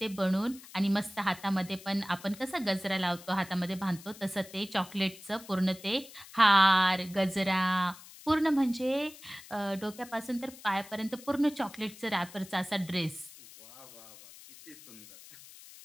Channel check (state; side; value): noise; left; hiss, 19 dB below the sound